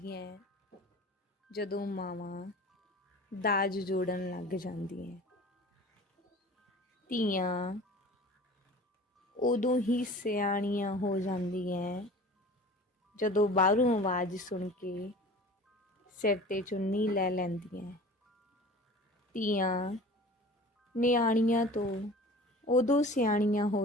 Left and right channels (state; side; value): normal; both; correlation 0.41